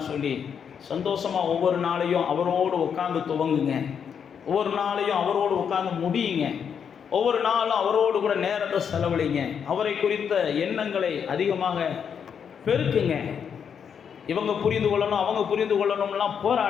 சொல்லி சந்தோஷமாக ஒவ்வொரு நாளையும் அவரோடு உட்காந்து துவங்குங்க. ஒவ்வொரு நாளையும் அவரோடு உட்காந்து முடியுங்க. ஒவ்வொரு நாளும் அவரோடு கூட நேரத்தை செலவழிங்க. அவரை குறித்த எண்ணங்களை அதிகமாக பெருக்குங்க. இவங்க புரிந்து கொள்ளணும் அவங்க புரிந்து கொள்ளணும்லாம்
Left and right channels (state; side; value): quieter; right; 7.4 dB